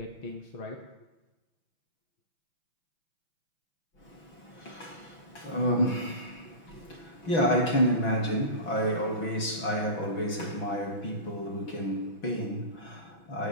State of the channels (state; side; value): late; right; 6.1 ms